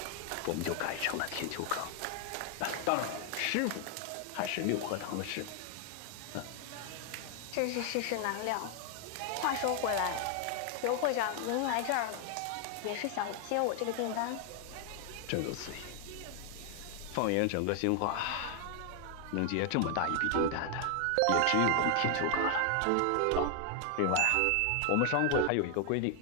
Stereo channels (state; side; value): different; both; correlation 0.00